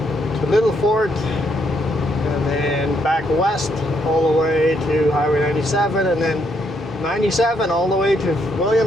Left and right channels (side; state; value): both; normal; correlation 0.74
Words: to Little Fort, and then back west all the way to Highway 97, and then 97 all the way to